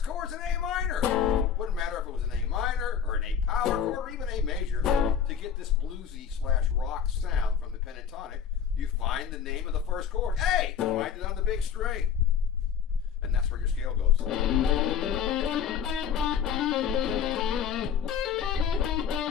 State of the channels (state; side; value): quieter; right; 7.9 dB